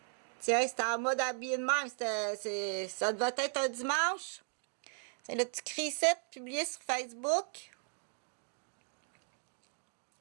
Tiens, c'était en mode habillé de même. Ça devait être un dimanche. C'est le petit cri-set publié sur Facebook.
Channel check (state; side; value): silent; left; 53 dB below the other